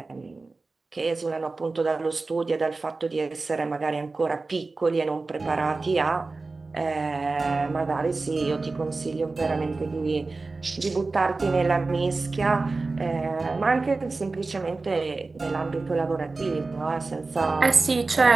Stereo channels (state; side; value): quieter; left; 3.7 dB